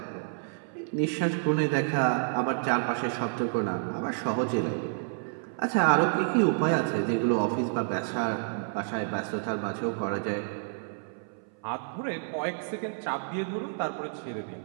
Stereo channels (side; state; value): left; silent; 58 dB below the other